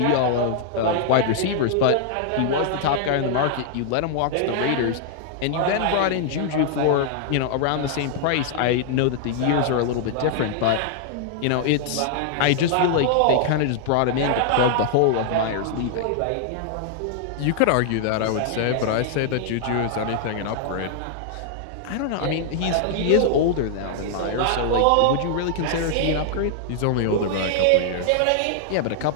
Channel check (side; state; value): both; different; correlation -0.01